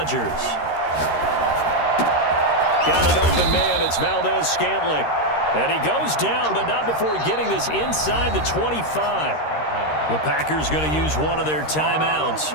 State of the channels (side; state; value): right; late; 13 ms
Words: Got an open man. It's Valdez-Scantling. And he goes down, but not before getting this inside the 25. The Packers going to use one of their timeouts